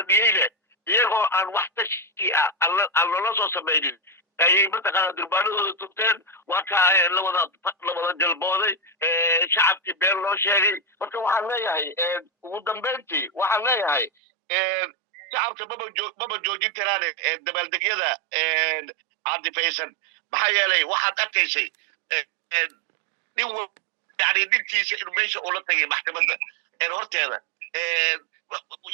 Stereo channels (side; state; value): left; drops out; at 14.1 s